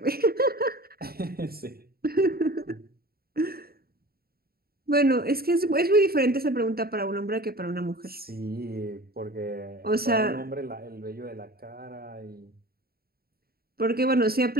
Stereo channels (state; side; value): late; left; 0.44 ms